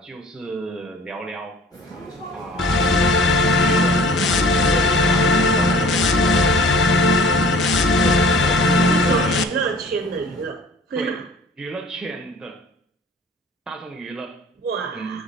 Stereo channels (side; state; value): both; normal; correlation 0.47